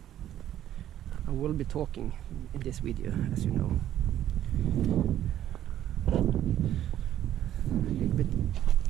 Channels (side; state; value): left; quieter; 11.8 dB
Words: I will be talking in this video, as you know, a little bit